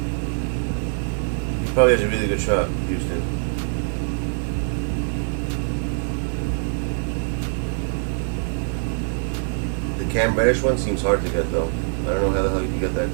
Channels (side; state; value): left; silent; digital silence